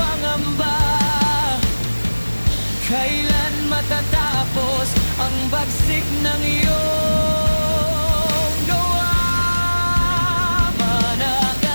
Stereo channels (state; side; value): inverted; both; correlation -1.00